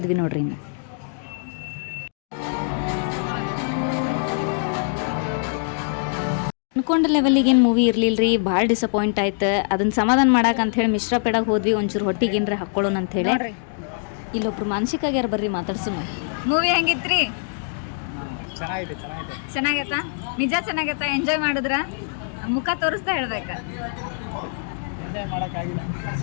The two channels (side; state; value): right; silent; digital silence